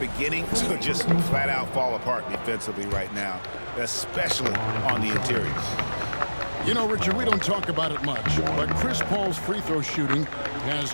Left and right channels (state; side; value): inverted; both; correlation -1.00